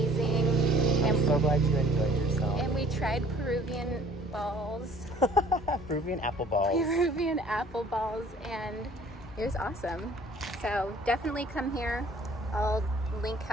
I'm so glad you enjoyed yourself. And we tried Peruvian balls. Peruvian apple balls. Peruvian apple balls, and it was awesome. So definitely come here. I'll link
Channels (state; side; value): normal; both; correlation 0.54